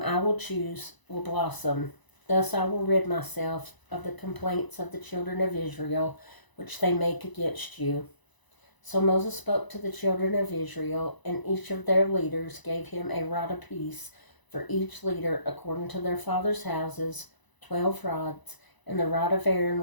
I will choose will blossom. Thus I will rid myself of the complaints of the children of Israel, which they make against you." So Moses spoke to the children of Israel, and each of their leaders gave him a rod apiece, for each leader according to their father's houses, 12 rods, and the rod of Aaron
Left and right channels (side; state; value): right; late; 1.0 ms